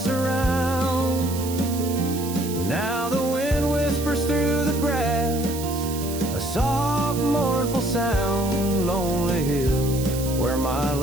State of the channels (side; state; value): right; noise; hiss, 11 dB below the sound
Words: around. Now the wind whispers through the grass, a soft, mournful sound. Lonely hill, where my